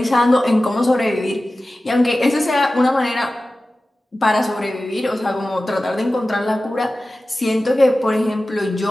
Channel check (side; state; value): both; normal; correlation 0.96